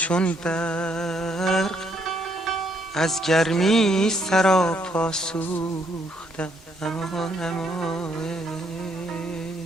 برق از گرمی سراپا سوختم. اما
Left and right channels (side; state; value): both; normal; correlation 0.71